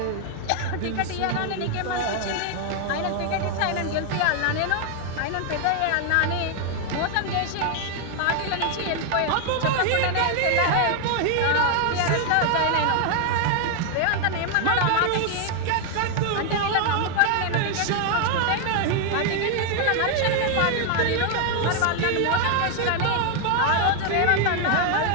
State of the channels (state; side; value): different; both; correlation 0.00